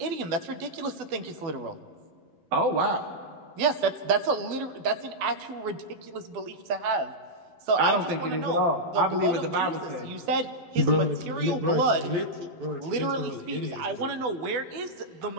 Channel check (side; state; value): left; late; 12 ms